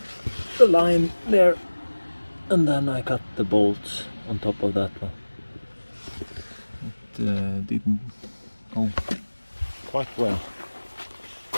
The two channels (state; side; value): inverted; both; correlation -1.00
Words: line there, and then I cut the bolts on top of that one. It didn't go quite well.